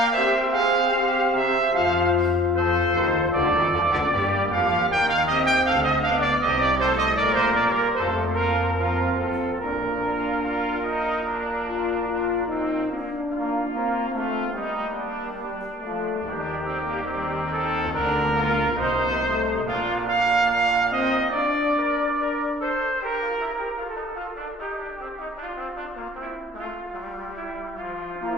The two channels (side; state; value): both; normal; correlation 0.56